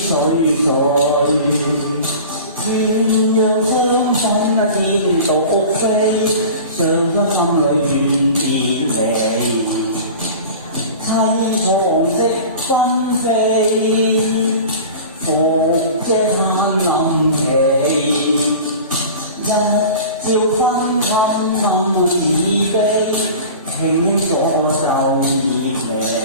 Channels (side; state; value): both; inverted; correlation -0.37